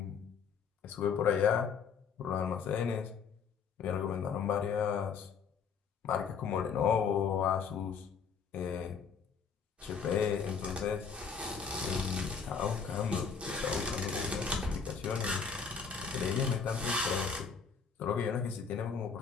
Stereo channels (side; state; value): right; quieter; 6.2 dB